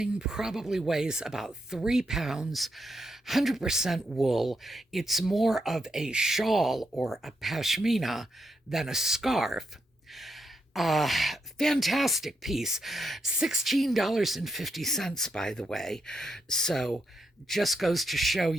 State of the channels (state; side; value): normal; both; correlation 0.81